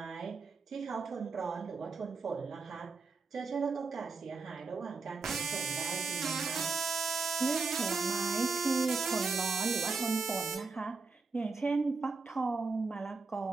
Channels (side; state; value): left; quieter; 4.4 dB